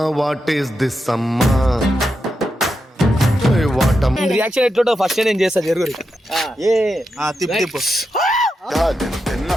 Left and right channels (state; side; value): normal; both; correlation 0.87